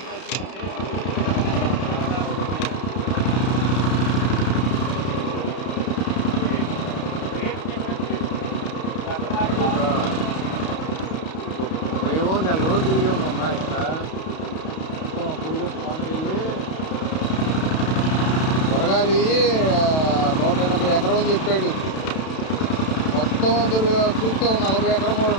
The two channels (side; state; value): right; late; 32 ms